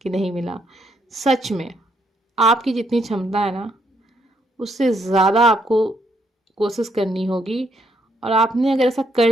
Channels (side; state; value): both; normal; correlation 0.74